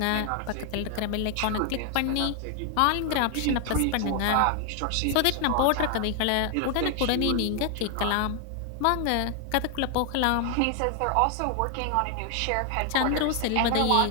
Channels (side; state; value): both; different; correlation 0.00